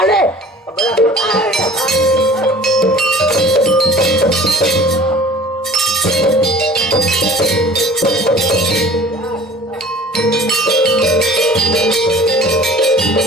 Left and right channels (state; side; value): normal; both; correlation 0.46